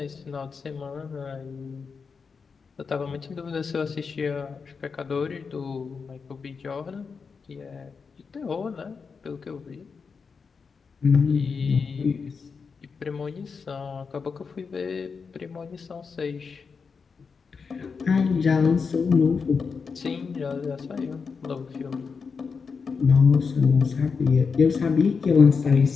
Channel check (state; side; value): quieter; right; 5.4 dB